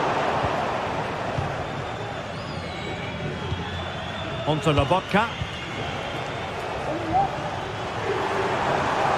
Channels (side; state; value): both; identical; correlation 1.00